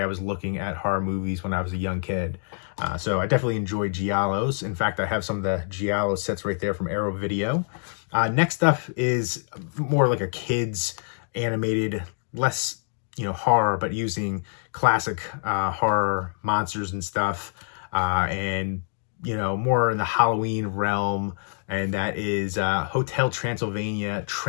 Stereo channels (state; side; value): silent; right; 58 dB below the other